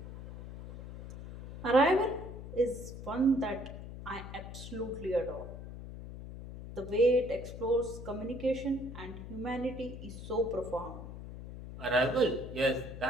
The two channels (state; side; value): noise; left; hum, 11 dB below the sound